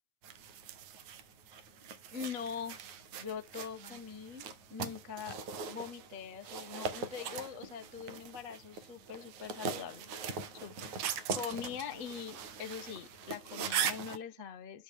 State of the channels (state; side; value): late; left; 9.3 ms